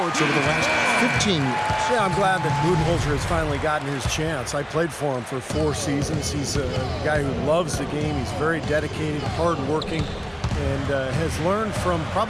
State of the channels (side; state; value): both; identical; correlation 1.00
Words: over the last 15 years. Yeah, I'm glad that Budenholzer has finally gotten his chance. I played for him for 4 seasons. He's a guy who loves the game. He's very dedicated, hardworking, and has learned from